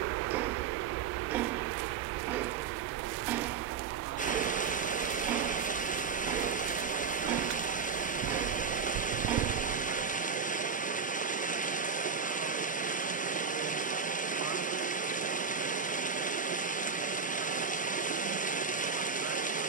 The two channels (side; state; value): left; quieter; 5.8 dB